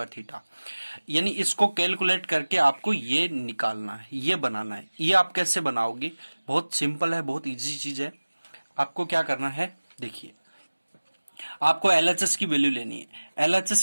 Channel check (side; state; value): both; inverted; correlation -1.00